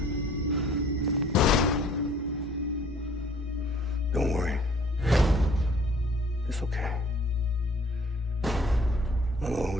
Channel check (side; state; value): both; normal; correlation 0.56